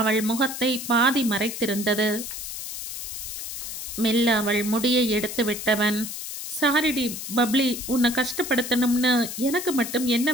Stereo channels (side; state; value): left; noise; hiss, 7 dB below the sound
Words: முகத்தை பாதி மறைத்திருந்தது. மெல்ல அவள் முடியை எடுத்து விட்டவன், சாரிடி பப்ளி, உன்னை கஷ்டப்படுத்தணும்னு எனக்கு மட்டும் என்ன